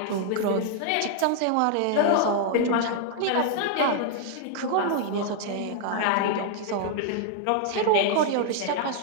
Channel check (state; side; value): different; both; correlation 0.00